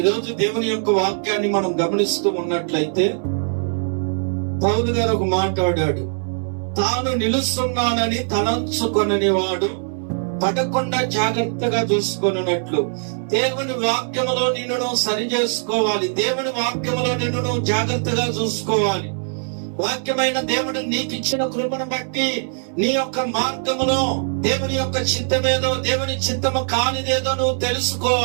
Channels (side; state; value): left; silent; 65 dB below the other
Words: దేవుని యొక్క వాక్యాన్ని మనం గమనిస్తూ ఉన్నట్లయితే పౌలు గారు ఒక మాట్లాడాడు, తాను నిలుస్తున్నానని తలంచుకొనని వాడు పడకుండా జాగ్రత్తగా చూసుకొనున్నట్లు దేవుని వాక్యములో నిన్ను సరి చేసుకోవాలి. దేవుని వాక్యములో నిన్ను జాగ్రత్తగా చూసుకోవాలి. వాక్యమైన దేవుడు నీకు ఇచ్చిన కృపను బట్టి నీ యొక్క మార్గములో దేవుని యొక్క చిత్తమేదో, దేవుని చిత్తము కానిదేదో నువ్వు